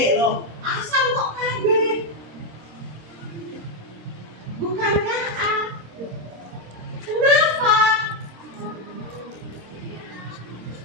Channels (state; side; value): late; left; 26 ms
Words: loh. Asam kok KB? Bukankah A? Kenapa?